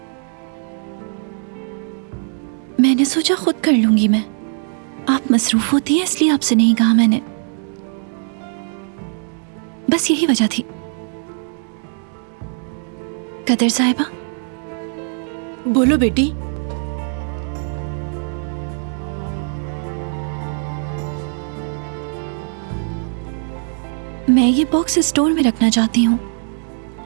मैंने सोचा खुद कर लूंगी मैं। आप मसरूफ होती हैं इसलिए आपसे नहीं कहा मैंने। बस यही वजह थी। कदर साहिबा। बोलो बेटी। मैं ये बॉक्स स्टोर में रखना चाहती हूँ।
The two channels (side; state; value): left; silent; 58 dB below the other